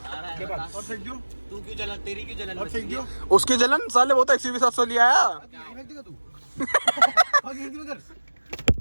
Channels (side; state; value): both; inverted; correlation -1.00